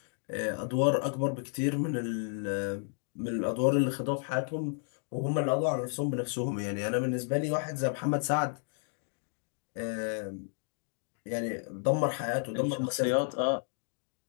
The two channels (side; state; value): right; silent; 56 dB below the other